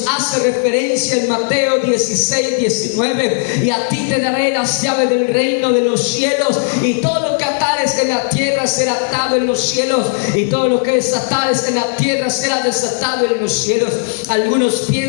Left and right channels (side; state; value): right; silent; digital silence